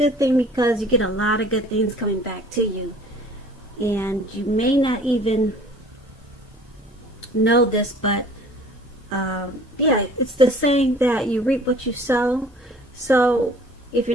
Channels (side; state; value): both; normal; correlation 0.50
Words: thing, because you get a lot of good things coming back to you. And you may not even know this, but yeah, it's the saying that you reap what you sow. So if